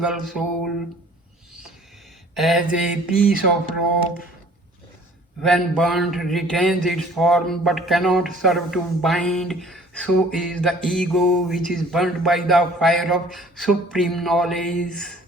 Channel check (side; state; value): both; normal; correlation 0.53